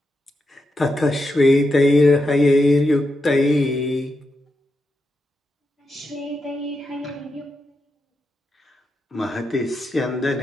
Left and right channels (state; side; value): normal; both; correlation 0.86